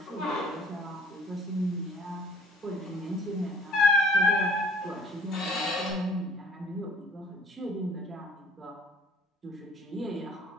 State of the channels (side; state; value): both; normal; correlation 0.55